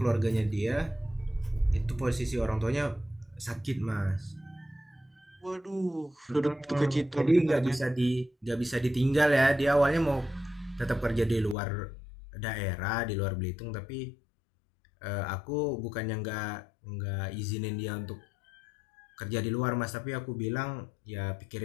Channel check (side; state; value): right; drops out; at 11.6 s